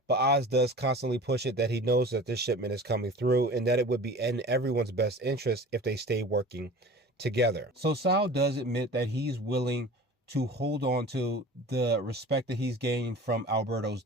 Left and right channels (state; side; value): normal; both; correlation 0.39